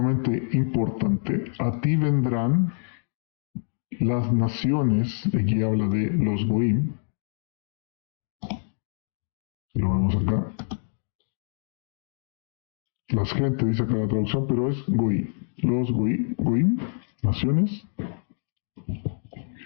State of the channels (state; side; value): silent; right; digital silence